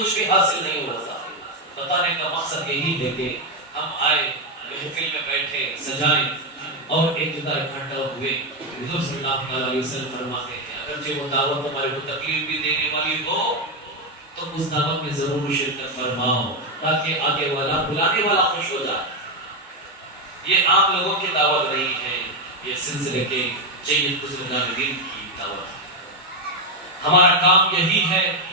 بھی حاصل نہیں ہوتا. بتانے کا مقصد یہی ہے کہ ہم آئے محفل میں بیٹھے سجائیں اور ایک جگہ اکٹھا ہوئے. حضور صلی اللہ علیہ وسلم فرماتے ہیں اگرچہ وہ دعوت ہمارے کو تکلیف بھی دینے والی ہو تو اس دعوت میں ضرور شرکت فرماؤ تاکہ آگے والا بلانے والا خوش ہو جائے. یہ عام لوگوں کی دعوت نہیں ہے، یہ سلسلے کے جید بزرگان دین کی دعوت ہے. ہمارا کام یہی ہے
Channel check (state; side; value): normal; both; correlation 0.06